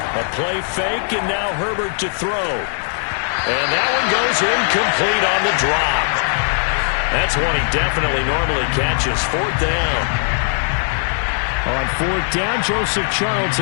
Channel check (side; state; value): right; silent; 67 dB below the other